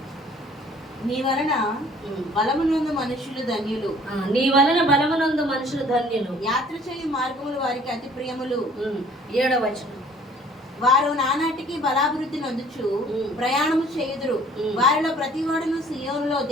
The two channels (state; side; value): normal; both; correlation 0.54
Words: నీ వలన బలమునందు మనుషులు ధన్యులు. నీ వలన బలమునందు మనుషులు ధన్యులు. యాత్ర చేయు మార్గములు వారికి అతి ప్రియములు. 7వ వచనం. వారు నానాటికి బలాభివృద్ధి నొందుచు ప్రయాణము చేయుదురు. వారిలో ప్రతి వాడును సియోనులో